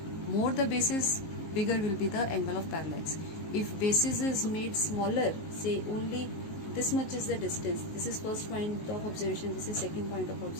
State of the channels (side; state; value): right; late; 19 ms